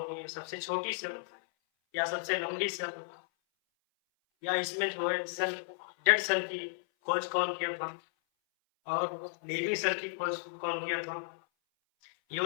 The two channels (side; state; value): right; silent; 55 dB below the other